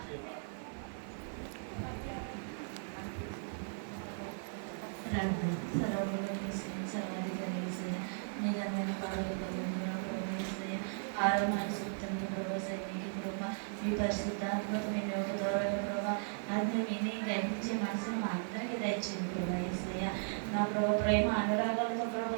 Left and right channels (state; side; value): silent; left; 53 dB below the other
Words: ఆరోగ్య సూక్తం ప్రభావ సైనిక ప్రభావ మీ పరిశుద్ధాత్మకమైన ఒక దూరమైన ప్రభావ అది విని గ్రహించే మనసును మా అందరికీ దయచేయండి ప్రభా యేసయ్య. నా ప్రభావ ప్రేమ అనురాగాలతో ప్రభావ